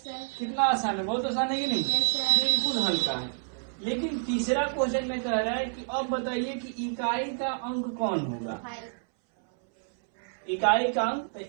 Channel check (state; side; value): silent; left; 59 dB below the other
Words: आसान है, बहुत आसान है कि नहीं, बिल्कुल हल्का है। लेकिन तीसरा क्वेश्चन में कह रहा है कि अब बताइए कि इकाई का अंक कौन होगा। इकाई का अंक, तो